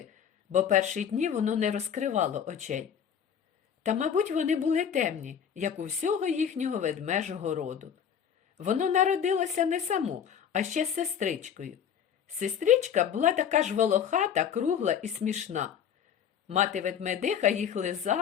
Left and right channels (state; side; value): quieter; right; 8.2 dB